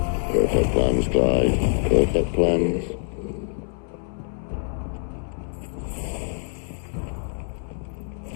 Perfect plans, Clyde. Perfect plans.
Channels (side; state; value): right; silent; 57 dB below the other